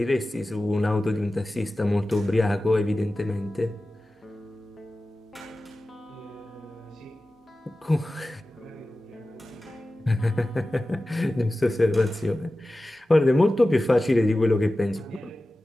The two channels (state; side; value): normal; both; correlation 0.95